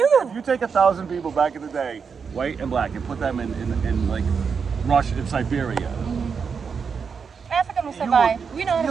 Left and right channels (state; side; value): quieter; left; 6.0 dB